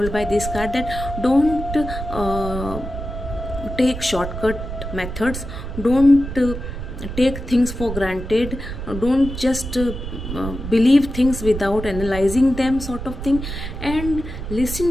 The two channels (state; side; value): noise; right; rumble, 7 dB below the sound